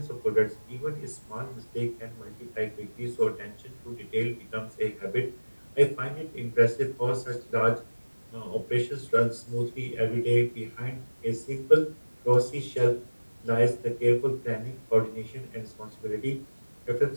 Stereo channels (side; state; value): both; inverted; correlation -1.00